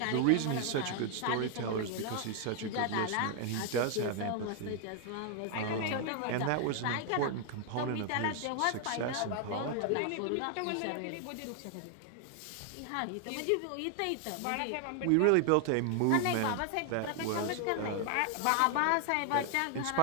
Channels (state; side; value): different; both; correlation 0.00